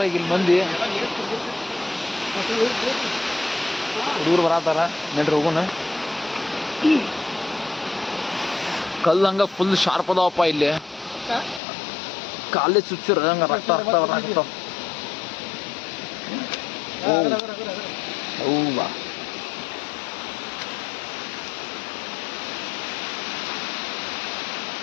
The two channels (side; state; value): right; drops out; at 11.6 s